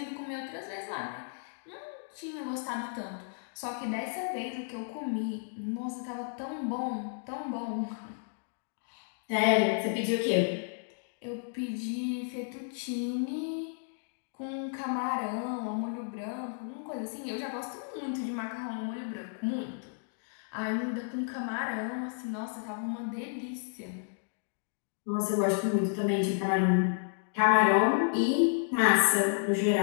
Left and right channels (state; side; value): silent; right; digital silence